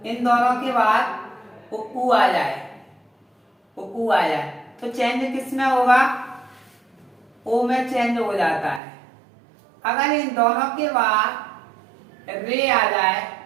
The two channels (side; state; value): left; drops out; at 8.8 s